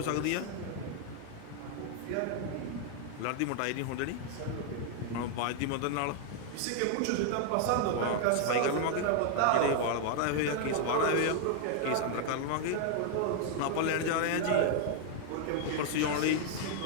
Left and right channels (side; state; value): both; different; correlation 0.00